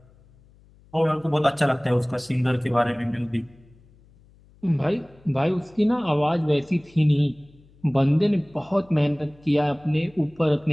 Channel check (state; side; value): noise; left; hum, 28 dB below the sound